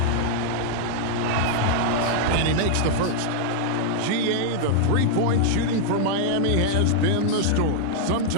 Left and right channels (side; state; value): both; different; correlation -0.01